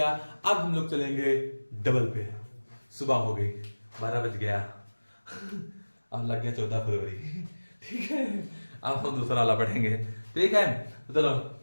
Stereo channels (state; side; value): inverted; both; correlation -1.00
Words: अब हम लोग चलेंगे डबल पे। सुबह हो गई, 12 बज गया, अब लग गया 14 फरवरी, ठीक है। अब हम दूसरा वाला पढ़ेंगे, ठीक है। तो चलो